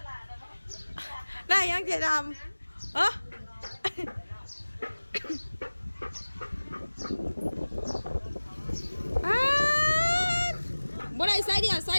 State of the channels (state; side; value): inverted; both; correlation -1.00